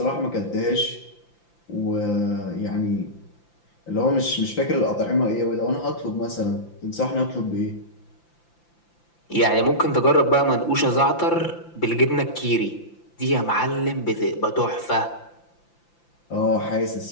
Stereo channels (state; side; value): late; right; 5.9 ms